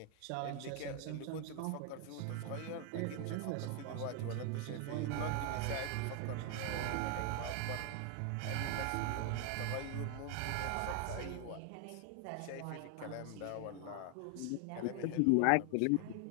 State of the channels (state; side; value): different; both; correlation 0.00